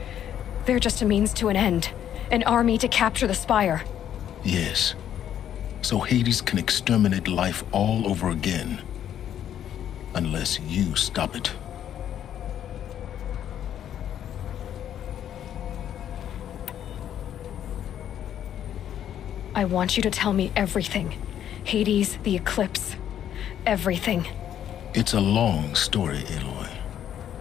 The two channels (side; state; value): right; quieter; 10.2 dB